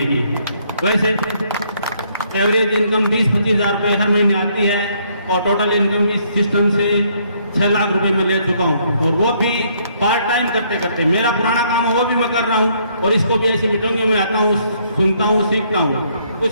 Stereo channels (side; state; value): both; inverted; correlation -0.68